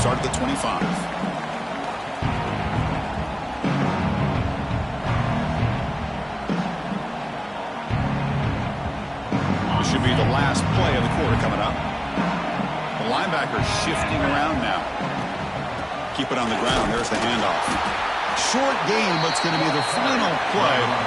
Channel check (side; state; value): both; identical; correlation 1.00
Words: at the 25. This should be the last play of the quarter coming up. The linebacker shifting around now. Keep it on the ground. There's the handoff. Short game, but it's going to be the final play